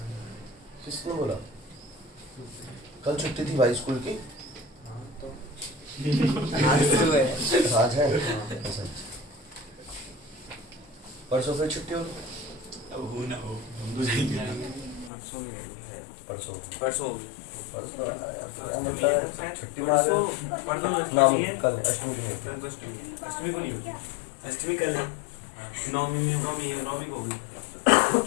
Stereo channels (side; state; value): right; drops out; at 15.1 s